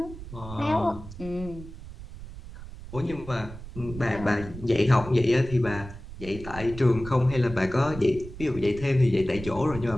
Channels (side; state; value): right; noise; rumble, 13 dB below the sound